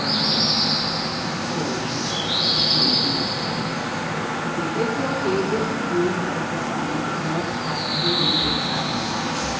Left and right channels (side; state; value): both; identical; correlation 1.00